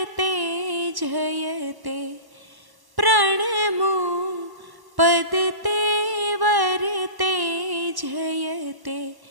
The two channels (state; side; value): late; left; 1.1 ms